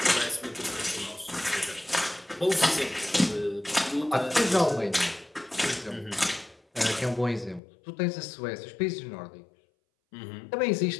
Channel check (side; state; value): right; drops out; at 7.6 s